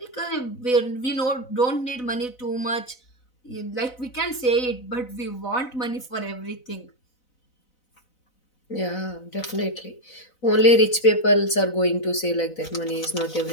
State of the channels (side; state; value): right; late; 4.0 ms